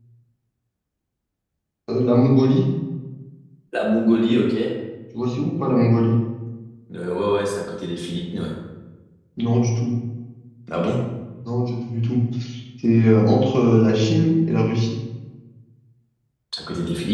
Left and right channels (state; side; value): identical; both; correlation 1.00